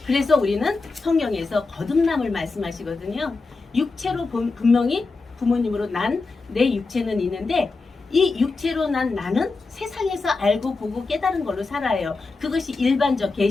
그래서 우리는 성경에서 거듭남을 말씀하시거든요. 육체로 분명히 부모님으로 난 내 육체는 있는데, 이 육체로 난 나는 세상에서 알고 보고 깨달은 걸로 살아요. 그것이 일반적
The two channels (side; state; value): right; quieter; 3.9 dB